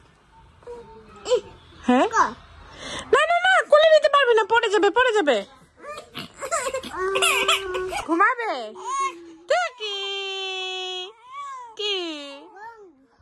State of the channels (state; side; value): identical; both; correlation 1.00